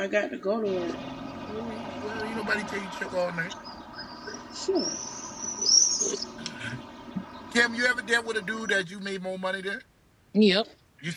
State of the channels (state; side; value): identical; both; correlation 1.00